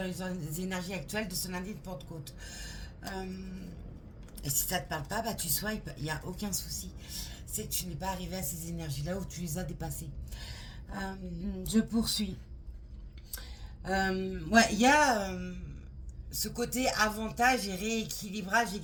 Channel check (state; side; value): identical; both; correlation 1.00